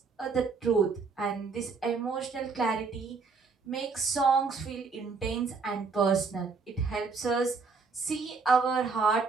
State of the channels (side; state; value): left; quieter; 4.6 dB